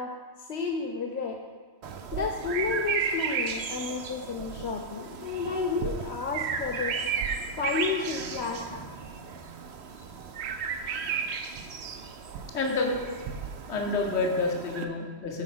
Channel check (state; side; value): late; left; 3.1 ms